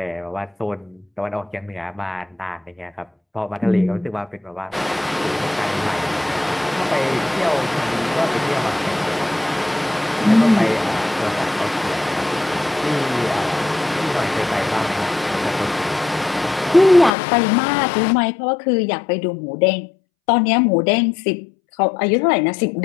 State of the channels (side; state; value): right; drops out; at 17.1 s